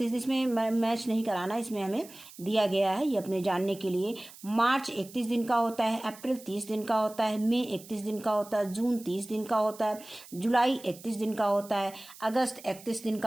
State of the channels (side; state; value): right; noise; hiss, 19 dB below the sound